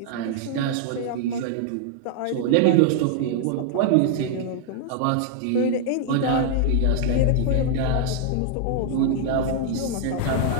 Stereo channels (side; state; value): both; different; correlation 0.00